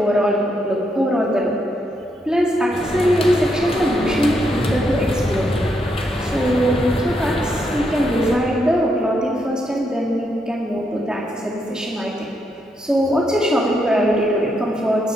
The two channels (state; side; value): normal; both; correlation 0.79